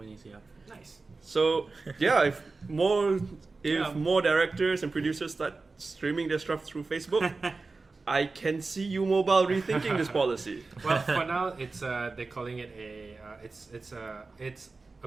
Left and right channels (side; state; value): left; quieter; 3.8 dB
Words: Yeah. Nice. So yeah, if more Yeah. directors and producers start streaming their stuff through Facebook, I can see you mobile rethinking this policy. Well, for now, it's they're calling it it's